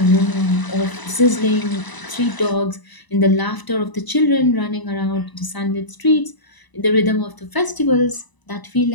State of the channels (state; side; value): late; right; 1.0 ms